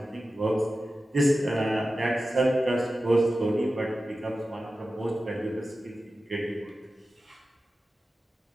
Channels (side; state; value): both; normal; correlation 0.94